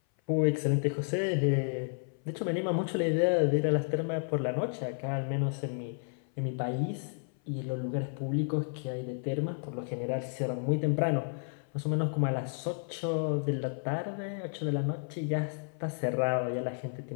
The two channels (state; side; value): silent; right; 57 dB below the other